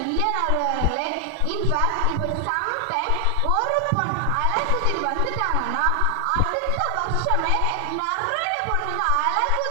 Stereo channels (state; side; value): different; both; correlation 0.00